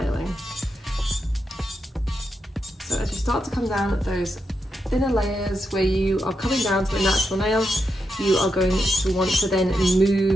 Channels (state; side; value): normal; both; correlation 0.85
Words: So as you start to come down those thinner layers where you are coming down to a natural nail, you are going to want to then